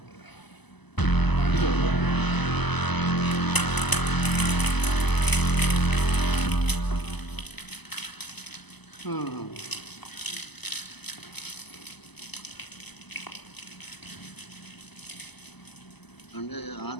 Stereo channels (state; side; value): late; right; 0.99 ms